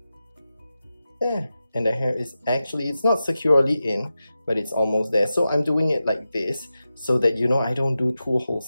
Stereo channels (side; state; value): both; inverted; correlation -0.92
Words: There. and the hair is actually, it's not securely in, but it's almost there. So I'm doing it like this so that, you know, I don't do two